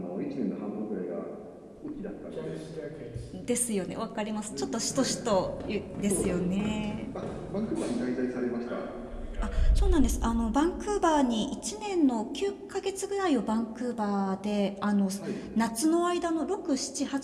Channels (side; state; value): both; identical; correlation 1.00